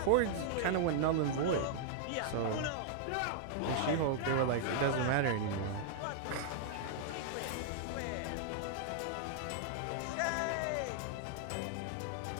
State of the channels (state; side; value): different; both; correlation -0.01